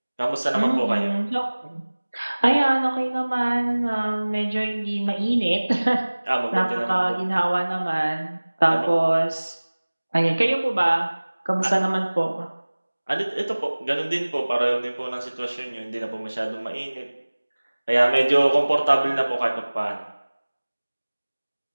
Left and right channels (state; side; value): inverted; both; correlation -1.00